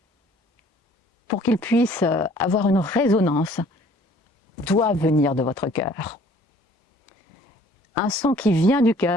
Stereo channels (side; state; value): both; normal; correlation 0.55